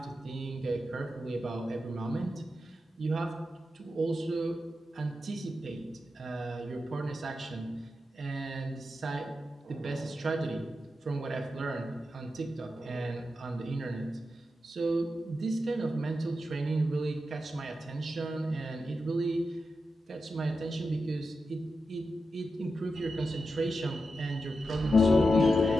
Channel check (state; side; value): normal; both; correlation 0.89